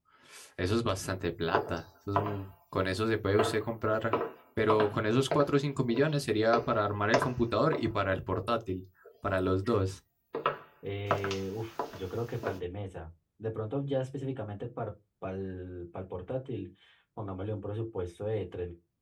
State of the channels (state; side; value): identical; both; correlation 1.00